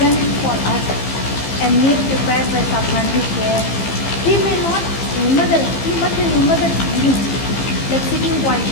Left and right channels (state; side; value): late; right; 15 ms